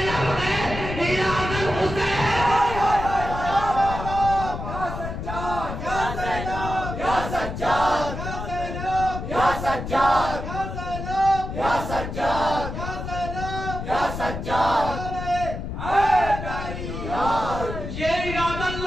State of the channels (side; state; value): left; noise; rumble, 6 dB below the sound